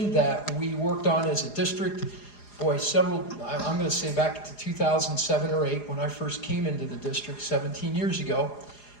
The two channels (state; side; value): late; right; 4.9 ms